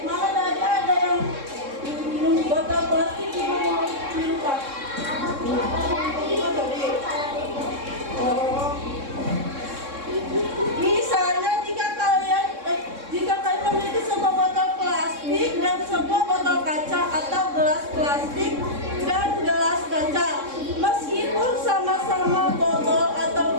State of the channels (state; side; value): late; left; 3.6 ms